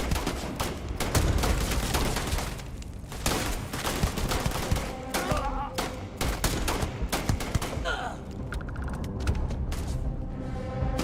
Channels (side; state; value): both; identical; correlation 1.00